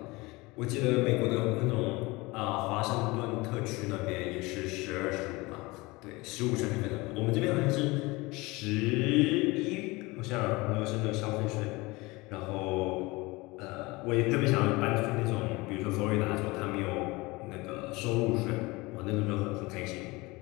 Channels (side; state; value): right; quieter; 23.1 dB